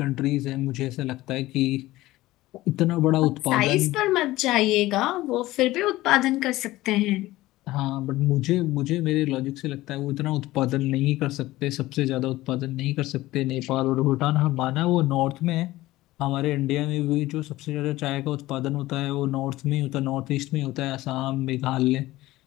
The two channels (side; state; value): right; quieter; 17.4 dB